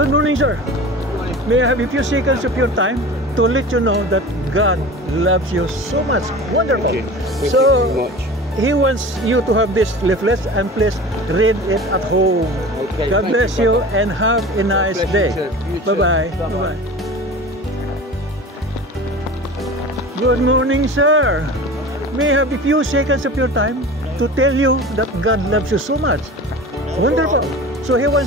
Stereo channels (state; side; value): normal; both; correlation 0.36